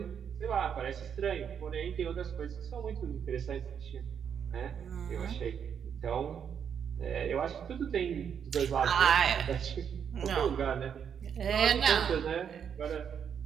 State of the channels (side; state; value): left; quieter; 7.8 dB